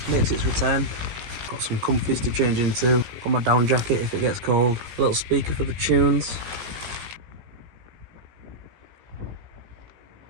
makes its return. Got some comfies to change into. Got my down jacket if it gets cold. A little speaker for the tunes.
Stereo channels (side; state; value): left; late; 17 ms